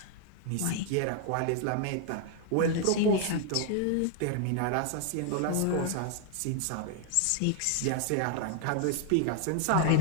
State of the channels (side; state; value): both; different; correlation 0.00